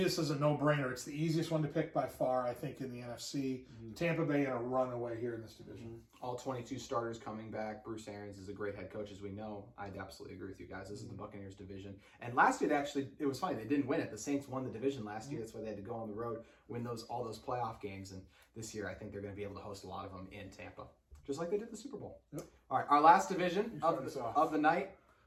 this is a no-brainer. It's the easiest one to pick by far, I think, in the NFC. Mm-hmm. Tampa Bay in a runaway here in this division. Mm-hmm. All 22 starters coming back. Bruce Arians is a great head coach, as we know. I'd absolutely agree with you guys. This is the Buccaneers division. And last year, it was funny. They didn't win it. The Saints won the division last year. That's why they had to go on the road, win all those playoff games. And this year, I think they're going to be able to host a lot of them in Tampa, just like they did the Super Bowl. Yep. All right, our last division of the night.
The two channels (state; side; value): identical; both; correlation 1.00